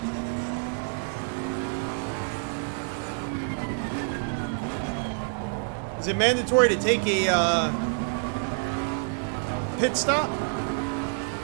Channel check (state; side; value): silent; left; 60 dB below the other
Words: Is it mandatory to take a pit stop?